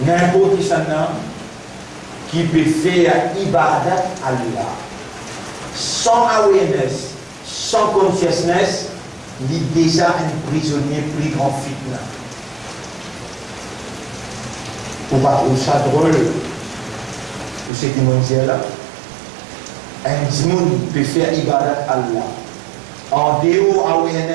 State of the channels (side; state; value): left; drops out; at 17.7 s